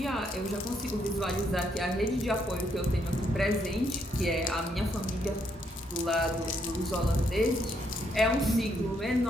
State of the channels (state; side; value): normal; both; correlation 0.74